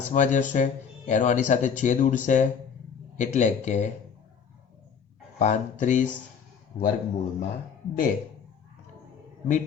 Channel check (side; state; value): right; quieter; 6.8 dB